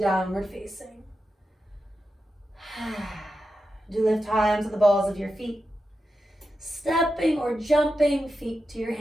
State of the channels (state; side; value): normal; both; correlation 0.89